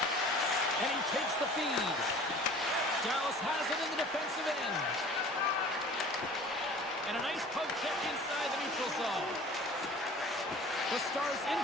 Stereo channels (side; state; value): both; normal; correlation 0.45